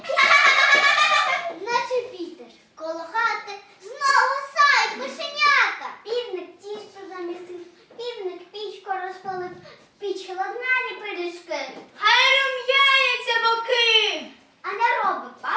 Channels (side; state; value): both; identical; correlation 1.00